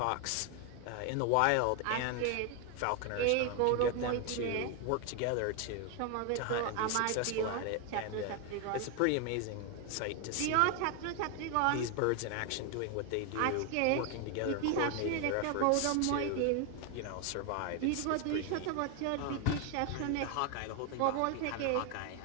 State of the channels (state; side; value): different; both; correlation 0.01